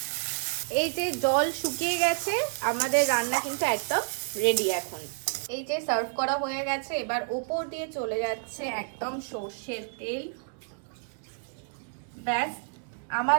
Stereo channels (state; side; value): silent; left; digital silence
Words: এই যে জল শুকিয়ে গেছে, আমাদের রান্না কিন্তু একদম রেডি। এখন এই যে সার্ভ করা হয়ে গেছে, এবার ওপর দিয়ে চলে যাচ্ছে একদম সর্ষের তেল। ব্যাস,